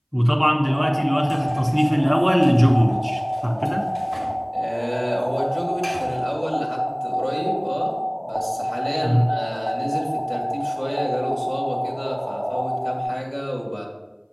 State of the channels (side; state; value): both; identical; correlation 1.00